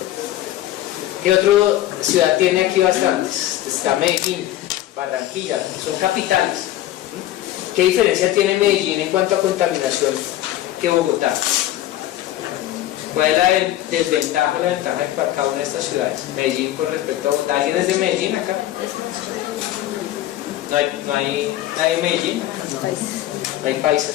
¿Qué otra ciudad tiene aquí bastantes? Está Medellín, Barranquilla, son capitales. ¿Qué diferencia tiene Medellín en cuanto a contaminación que Bogotá? ¿Cuál es la desventaja o la ventaja de cada una de estas ciudades? Medellín con respecto a Bogotá. ¿Alguien es de Medellín acá? ¿No hay nadie de Medellín? No hay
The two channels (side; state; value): right; quieter; 13.9 dB